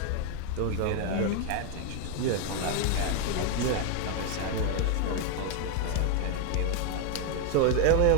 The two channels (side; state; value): both; different; correlation 0.01